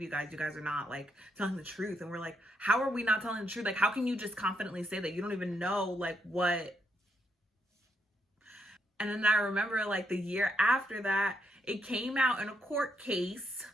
you guys. You guys are not like telling the truth. And we're like, how are we not telling the truth? Like, how can you just confidently say that? You don't even know like what. And then I remember like the year after that, it came out in a court case.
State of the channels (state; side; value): normal; both; correlation 0.78